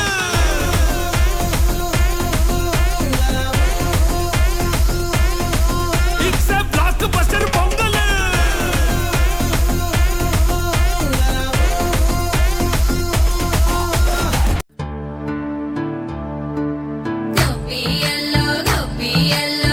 it's a blockbuster Pongal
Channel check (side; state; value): both; identical; correlation 1.00